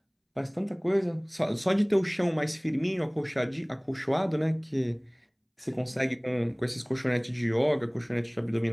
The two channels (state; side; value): identical; both; correlation 1.00